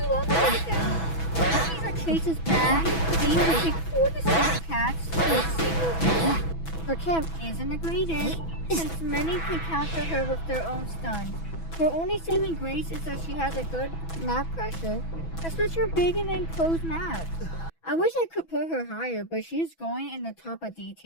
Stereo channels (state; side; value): late; right; 6.1 ms